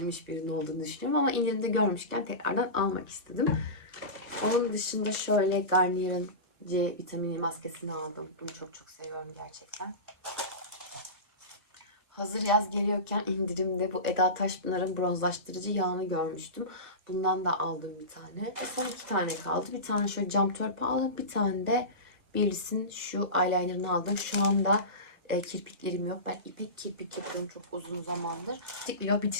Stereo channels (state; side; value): late; left; 1.3 ms